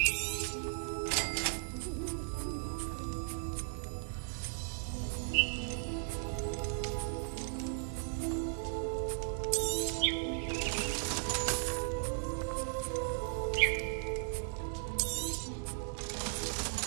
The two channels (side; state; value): left; silent; digital silence